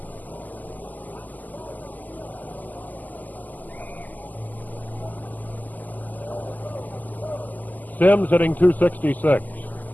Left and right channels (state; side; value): late; right; 0.083 ms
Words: Sims hitting .266.